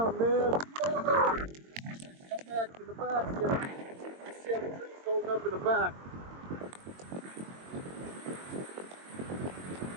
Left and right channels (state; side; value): late; left; 22 ms